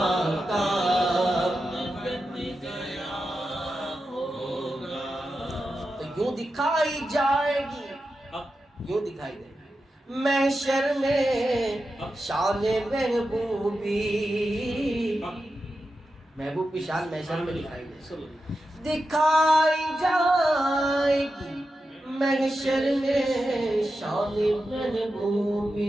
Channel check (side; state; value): both; normal; correlation 0.90